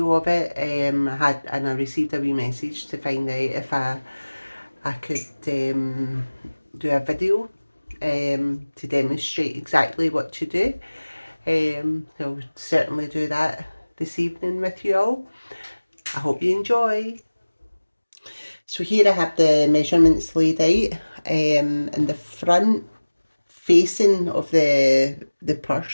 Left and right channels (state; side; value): inverted; both; correlation -1.00